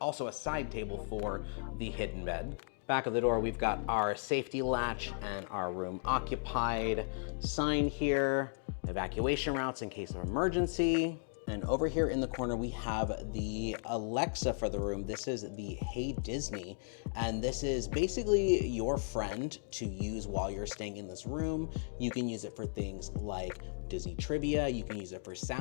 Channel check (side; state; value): right; silent; digital silence